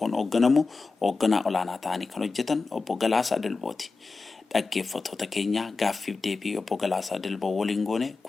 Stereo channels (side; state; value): right; quieter; 4.1 dB